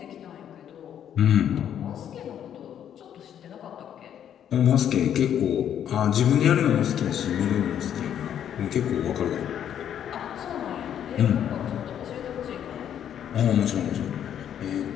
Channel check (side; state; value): right; quieter; 9.7 dB